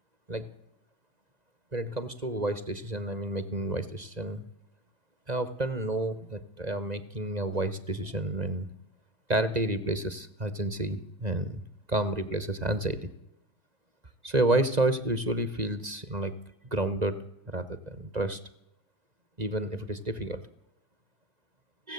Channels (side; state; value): left; late; 1.9 ms